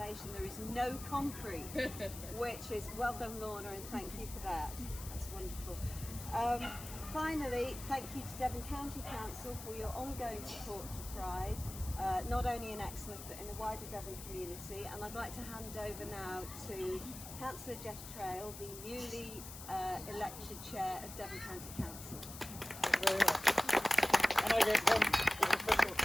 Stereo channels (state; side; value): noise; left; hiss, 12 dB below the sound